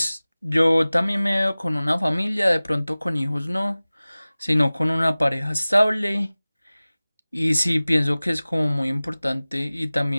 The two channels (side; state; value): both; inverted; correlation -0.99